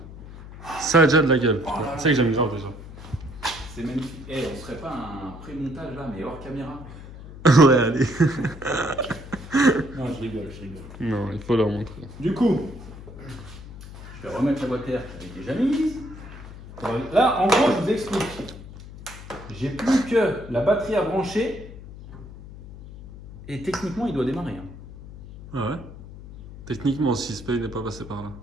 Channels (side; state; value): left; noise; hum, 15 dB below the sound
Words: Ça a déjà de la gueule. Tu sais que j'aime genre déjà. C'est magnifique. Eh, on serait pas un pré-montage là, mais hors caméra? Ouais, allez. Non, je rigole. Non, il faut leur montrer. Du coup, je vais remettre la boîte air qui avait déjà mise. Là, en gros, je vous explique. J'ai plus que la batterie à brancher et techniquement, il doit démarrer. Hein. Ah ouais? Techniquement, si Spay n'est pas passé par là.